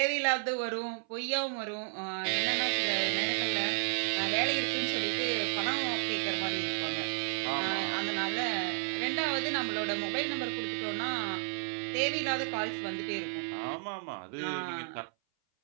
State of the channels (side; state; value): left; silent; 56 dB below the other